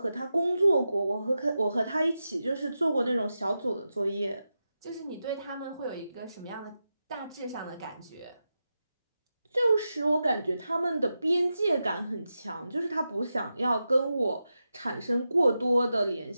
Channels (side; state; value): both; inverted; correlation -0.90